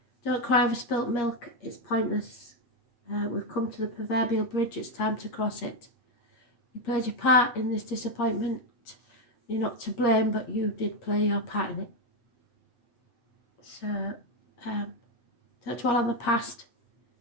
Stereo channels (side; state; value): right; late; 8.4 ms